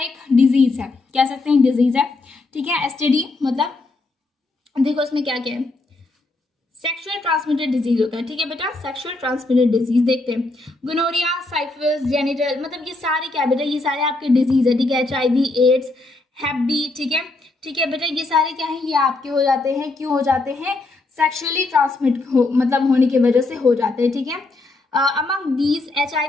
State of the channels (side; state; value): right; quieter; 3.2 dB